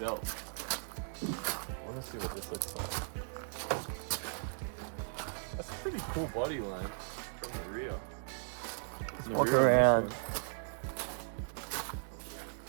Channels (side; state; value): left; silent; digital silence